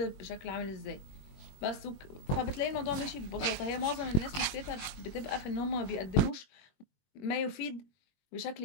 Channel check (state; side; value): late; right; 21 ms